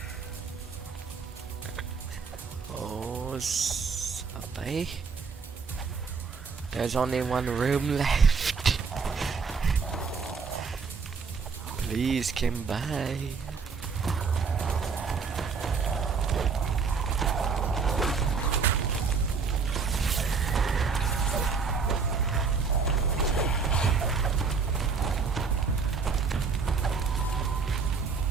Oh, sabay. There's only one room left. Please come by.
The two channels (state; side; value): quieter; left; 5.2 dB